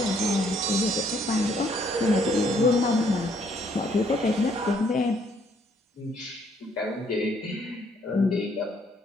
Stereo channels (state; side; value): normal; both; correlation 0.67